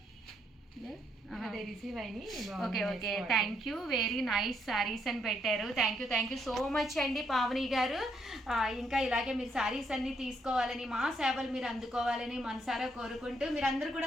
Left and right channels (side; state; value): both; normal; correlation 0.74